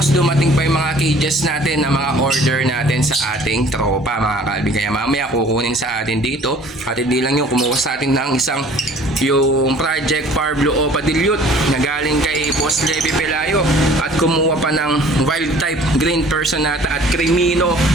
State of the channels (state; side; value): normal; both; correlation 0.51